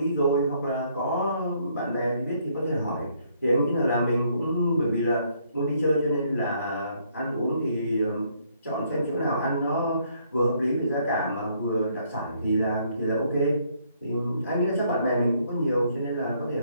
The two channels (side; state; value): both; inverted; correlation -0.68